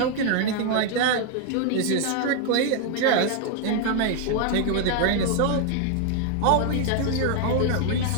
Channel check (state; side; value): different; both; correlation 0.00